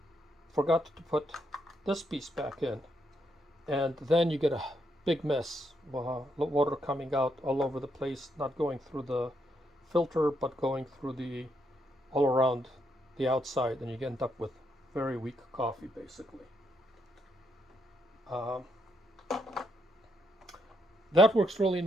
forgot to put this piece back in. And then you get a big mess, water coming out all over the place, not going through the filter, but going through all around the outside, and you end up with very weak coffee, basically. That works really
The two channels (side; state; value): both; normal; correlation 0.77